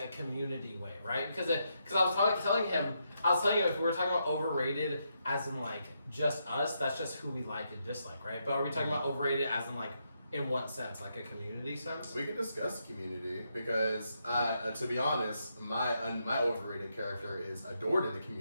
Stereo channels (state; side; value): inverted; both; correlation -0.80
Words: a community way, right? Because I was telling him if we were talking about overrated as in like just us, that's just who we like and dislike, right? But are we talking about overrated as in like in what sense, like a community sense? We can discuss community because, to be honest, my overrated character is adored in the